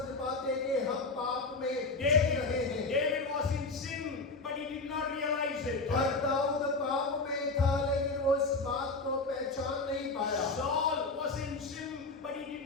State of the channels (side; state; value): right; quieter; 3.5 dB